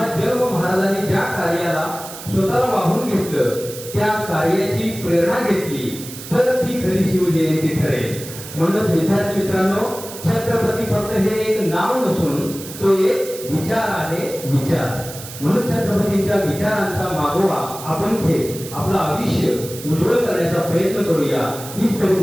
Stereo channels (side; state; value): right; noise; hiss, 13 dB below the sound